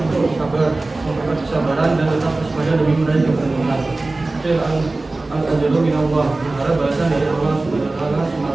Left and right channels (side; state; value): left; quieter; 3.2 dB